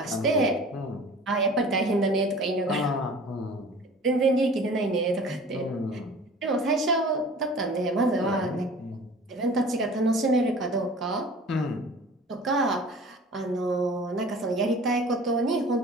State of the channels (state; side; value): normal; both; correlation 0.44